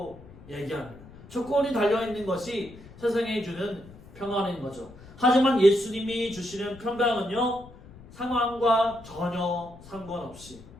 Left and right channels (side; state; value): left; noise; rumble, 20 dB below the sound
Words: 얘기합니다. 조건이 달려있는 것이 세상이 주는 평안인 거죠. 하지만 예수님이 주시는 평강은요, 상황과 전혀 상관없이